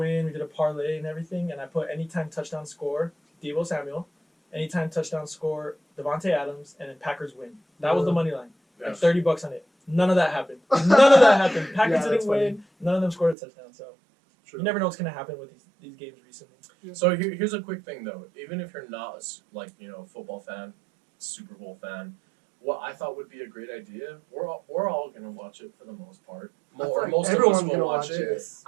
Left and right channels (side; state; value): left; drops out; at 13.4 s